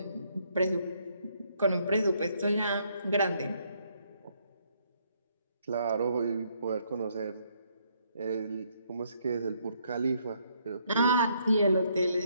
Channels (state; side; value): inverted; both; correlation -0.70